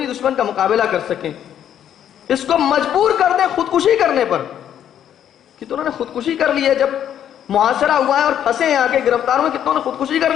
دشمن کا مقابلہ کر سکیں، اس کو مجبور کر دیں خودکشی کرنے پر۔ کتنوں نے خودکشی کر لی ہے، جب محاصرہ ہوا ہے اور پھنسے ہیں، آگے گرفتار ہوئے، کتنوں نے خودکشی کر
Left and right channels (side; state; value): right; quieter; 10.0 dB